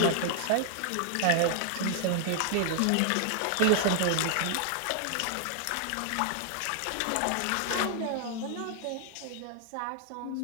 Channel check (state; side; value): different; both; correlation 0.00